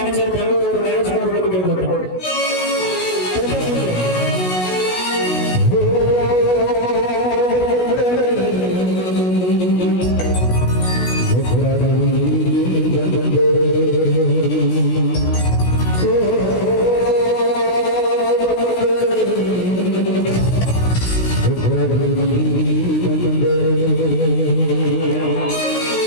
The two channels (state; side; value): late; right; 16 ms